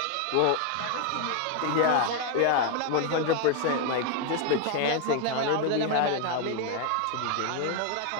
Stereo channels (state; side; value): different; both; correlation 0.01